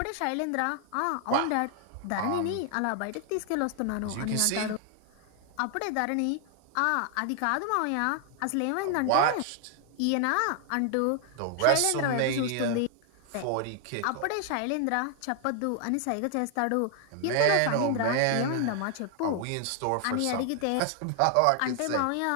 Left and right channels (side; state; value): both; different; correlation 0.00